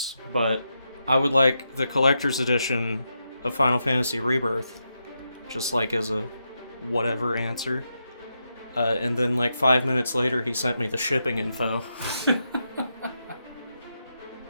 but I would like the collector's edition of Final Fantasy Rebirth, just like as a whatever answer. And then like 5 minutes later, he sent me the shipping info.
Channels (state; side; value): inverted; both; correlation -0.85